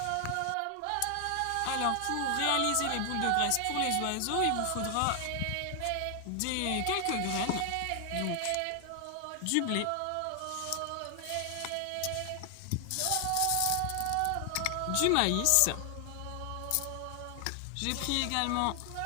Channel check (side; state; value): both; different; correlation 0.00